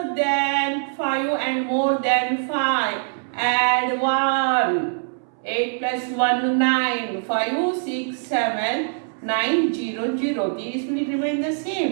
than 5 and more than 5. Add 1. 8 plus 1, 9. 5, 6, 7, 9, 0, 0. These will remain the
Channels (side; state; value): left; silent; 64 dB below the other